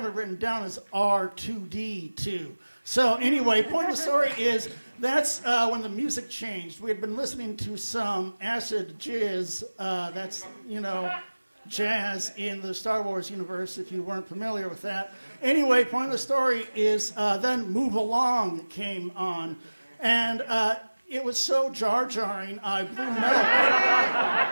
it written down as R2D2. So anyway, point of the story is that's when the music changed. We had been listening to some acid jizz, that's, jazz in the Star Wars universe, if you weren't familiar with that. Anyway, point of the story is then Move Along came on. And it was so jar-jarring, I blew milk.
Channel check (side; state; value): both; inverted; correlation -1.00